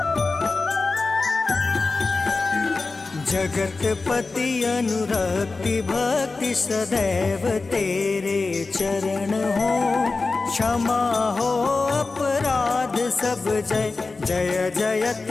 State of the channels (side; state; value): right; quieter; 3.8 dB